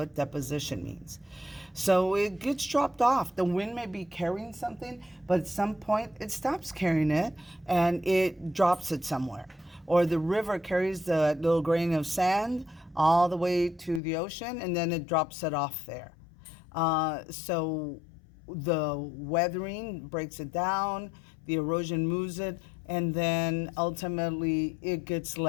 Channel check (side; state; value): right; drops out; at 14.0 s